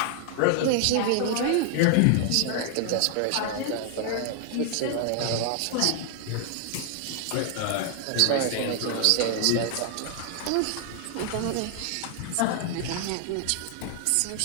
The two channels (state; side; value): different; both; correlation 0.00